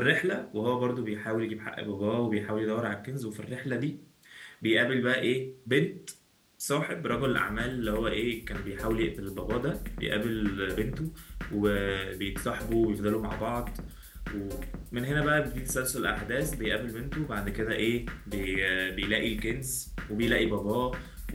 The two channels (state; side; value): identical; both; correlation 1.00